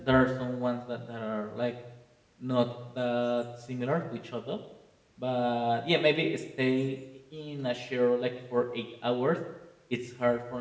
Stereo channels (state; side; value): identical; both; correlation 1.00